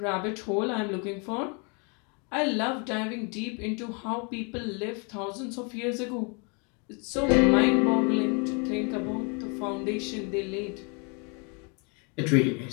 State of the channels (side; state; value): right; quieter; 34.5 dB